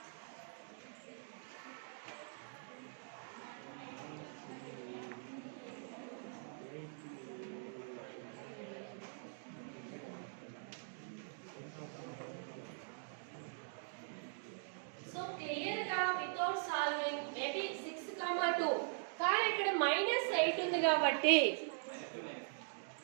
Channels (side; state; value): left; silent; digital silence